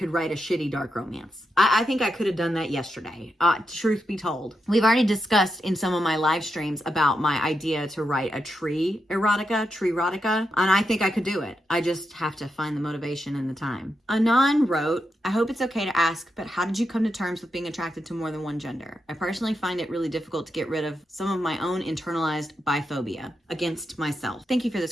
write a shitty dark romance. I think I could have done that yesterday. Truth be told, we've already discussed in some of my live streams about my idea to write a tree erotica, and I think I could do it. I just have to find the motivation and the time. Anon wrote, I hope it's okay to ask, but how did you come to terms with being attracted to more than one gender? I personally find it really difficult to get rid of some of my own internalized biphobia against myself. Thank you for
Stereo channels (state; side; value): normal; both; correlation 0.85